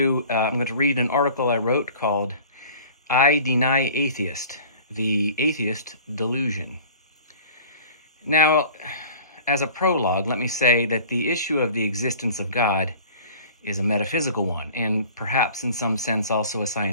read an article I wrote called "I Deny Atheist: The Atheist Delusion." Now, as a prologue, let me say that the issue of the existence of God is a metaphysical one, and perhaps in some sense also a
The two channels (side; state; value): both; inverted; correlation -0.45